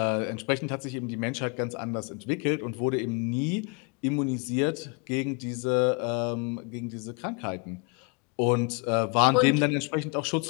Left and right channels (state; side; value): quieter; right; 34.2 dB